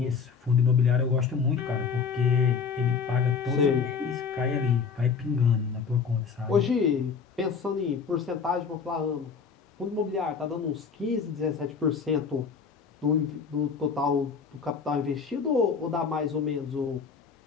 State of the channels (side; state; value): right; quieter; 5.8 dB